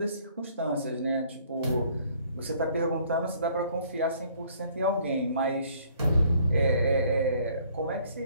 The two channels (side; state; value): both; inverted; correlation -0.60